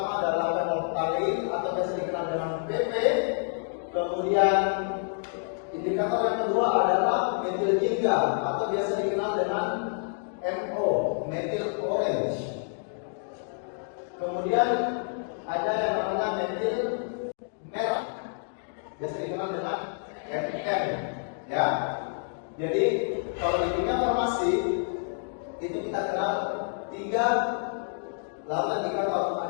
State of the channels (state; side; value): silent; right; digital silence